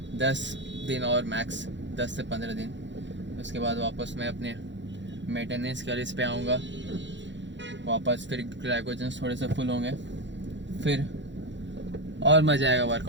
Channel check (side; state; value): left; late; 0.53 ms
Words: 10 दिन और मैक्स 10 से 15 दिन, उसके बाद वापस मैं अपने मेंटेनेंस कैलोरीज पे आऊँगा। वापस फिर ग्लाइकोजन थोड़े से फुल होंगे, फिर और मज़ा आएगा